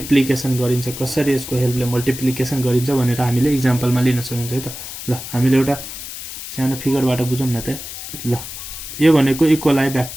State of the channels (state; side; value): noise; left; hiss, 10 dB below the sound